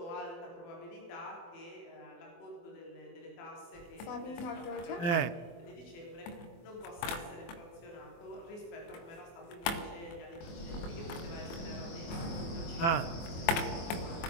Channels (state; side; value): late; right; 24 ms